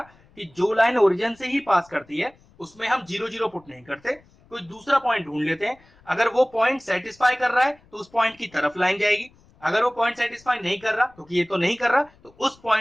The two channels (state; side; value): noise; left; rumble, 29 dB below the sound